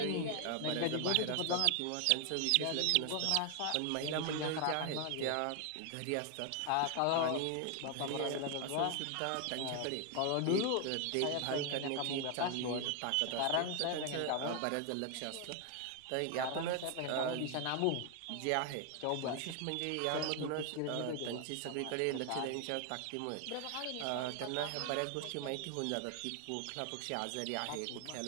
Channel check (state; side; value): different; both; correlation 0.01